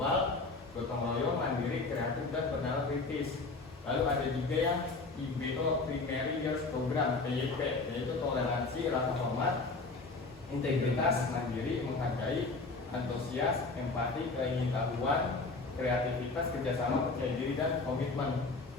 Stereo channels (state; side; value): quieter; right; 3.7 dB